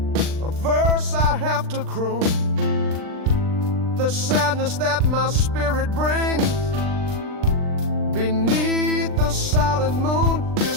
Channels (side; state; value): left; late; 39 ms